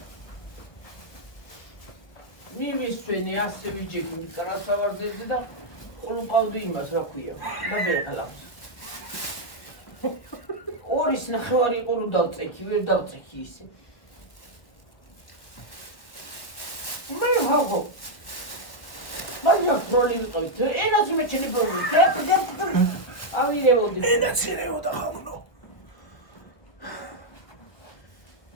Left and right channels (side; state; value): right; late; 1.3 ms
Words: მივისვენე ასე ვიჯექი მკრასავარძეზე და ყლუყავდი იმას რა ქვია და ბერხალავს. ორის ნახევარი იყო რომ დავწექი, ვერ დავწექი ისე. მე ვაღო. მაგრამ პროლი ვიყავით, ენაც მეჩენი პროლი. ამირებოდი. ენაც ერეოდა ხალხო.